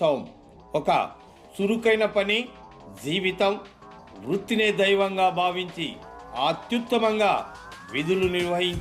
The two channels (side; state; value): both; identical; correlation 1.00